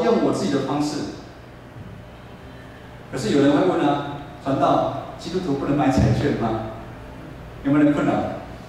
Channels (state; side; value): identical; both; correlation 1.00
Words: 用我自己的方式，可是有人会问传道，基督徒不能买彩券吗？有没有人困扰？